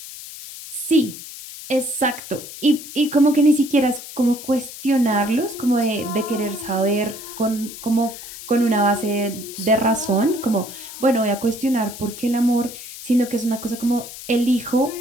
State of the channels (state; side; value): noise; left; hiss, 13 dB below the sound